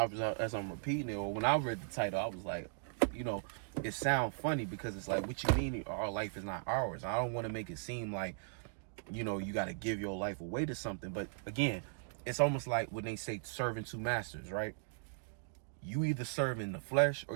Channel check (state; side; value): silent; left; digital silence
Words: repeating it, or when I read the title, I was like, you know, it sounds funny because it's like, what you mean our life is not ours? I don't want to make it seem like, you know, you got to give your life away to something. But again, it's almost like when they say serving two masters, right? You either serving the flesh